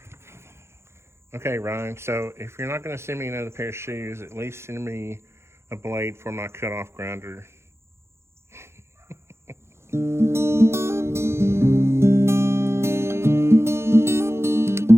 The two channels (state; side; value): late; left; 0.13 ms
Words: Okay, Ryan, so if you're not going to send me another pair of shoes, at least send me a blade for my cutoff grinder.